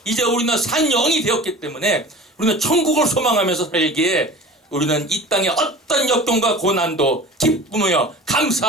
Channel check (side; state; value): both; normal; correlation 0.39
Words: 이제 우리는 산 영이 되었기 때문에 우리는 천국을 소망하면서 살기에 우리는 이 땅의 어떤 역경과 고난도 기쁘며